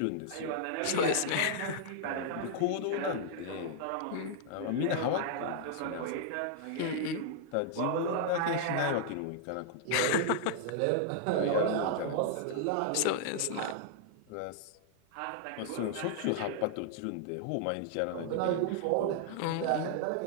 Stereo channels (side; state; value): both; different; correlation -0.01